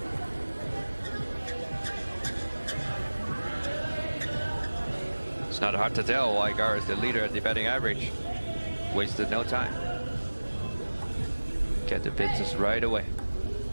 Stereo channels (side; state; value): both; inverted; correlation -1.00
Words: It's not hard to tell why Gara is the leader at the batting average. Wasted no time. Get the business right away.